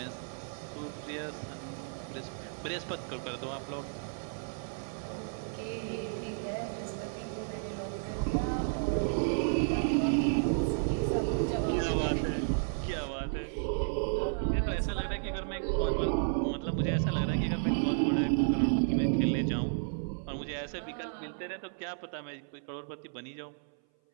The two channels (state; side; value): silent; left; 56 dB below the other